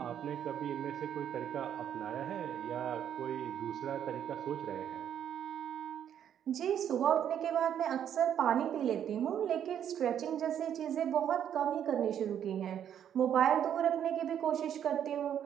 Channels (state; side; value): quieter; left; 9.5 dB